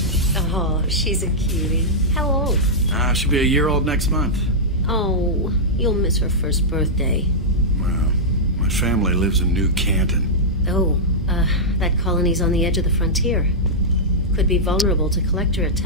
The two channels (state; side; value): normal; both; correlation -0.09